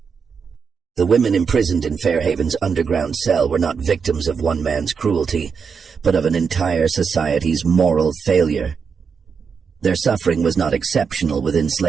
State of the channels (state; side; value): quieter; left; 6.0 dB